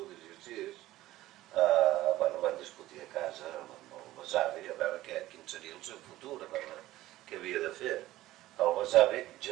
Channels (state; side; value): quieter; left; 15.9 dB